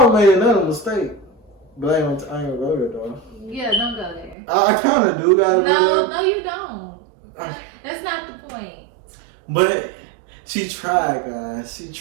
made another mistake. But I ain't gonna go there, though. Yeah, don't go there. I kind of do gotta go there. No, you don't. That's not the point. But she tried, guys. She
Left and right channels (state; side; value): drops out; left; at 4.4 s